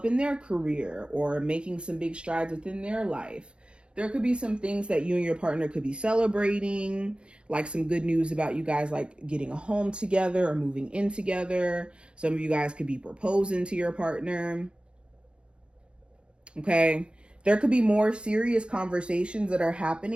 in their career or making some big strides within their life. There could be some things that you and your partner could be celebrating, like some good news about you guys like getting a home together or moving in together. Some of you guys could be proposing to your partner. Okay. There could be more serious conversations that are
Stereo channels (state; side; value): late; left; 0.056 ms